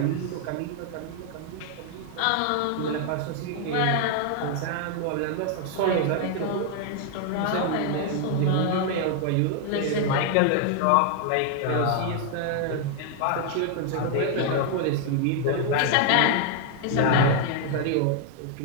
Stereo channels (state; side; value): different; both; correlation 0.00